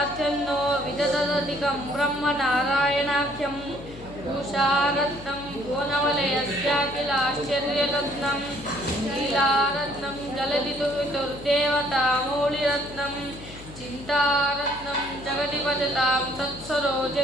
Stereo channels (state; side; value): noise; left; hum, 16 dB below the sound